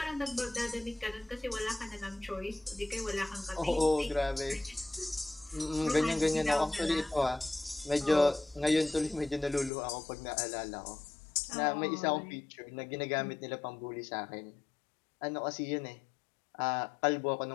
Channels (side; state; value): right; drops out; at 9.7 s